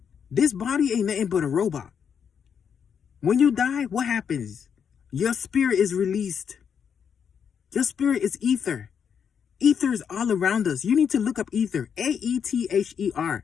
This body ain't nothing but a robot. When you die, what happens? Your spirit is released. Your spirit is ether. Ether is all around us. You need to look up ether. A-E-T-H-E-R.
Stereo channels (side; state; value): right; quieter; 7.4 dB